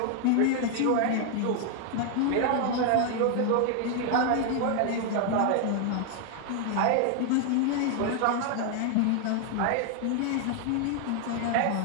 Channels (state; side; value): different; both; correlation 0.00